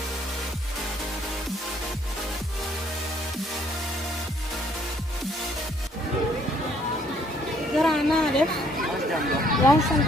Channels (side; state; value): both; normal; correlation 0.65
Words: Gara naa def yaa ngi sant